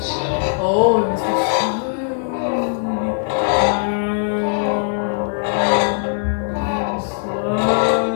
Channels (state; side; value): silent; right; digital silence